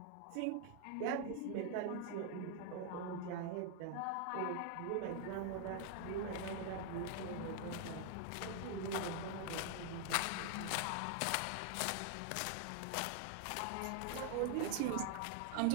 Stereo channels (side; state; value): both; different; correlation 0.00